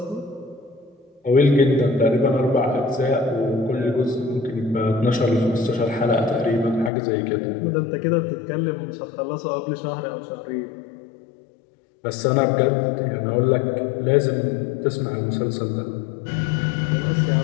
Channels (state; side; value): drops out; right; at 6.9 s